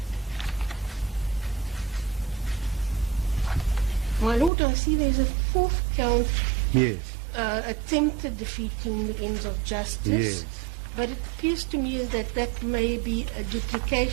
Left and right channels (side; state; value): left; drops out; at 4.5 s